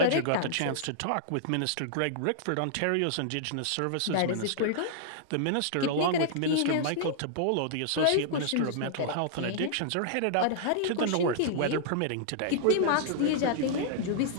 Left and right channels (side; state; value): both; different; correlation -0.01